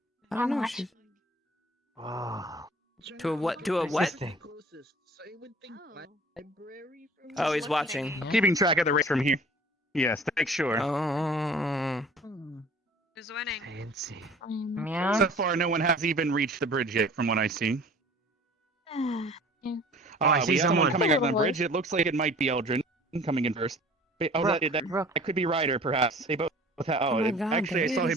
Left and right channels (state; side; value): normal; both; correlation 0.48